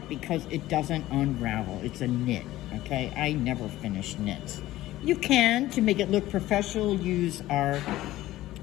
because it doesn't unravel. It's a knit, okay? I never finish knits. You can, to make it look professional, use our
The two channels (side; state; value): right; quieter; 15.8 dB